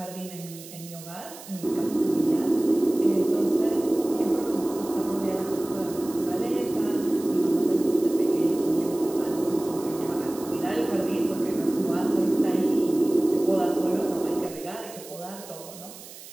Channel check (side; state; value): right; noise; hiss, 16 dB below the sound